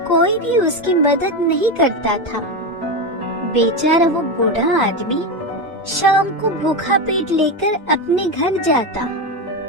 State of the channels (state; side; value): normal; both; correlation 0.14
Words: कोई भी उसकी मदद नहीं करता था। बेचारा वो बूढ़ा आदमी शाम को भूखा पेट लेकर अपने घर जाता।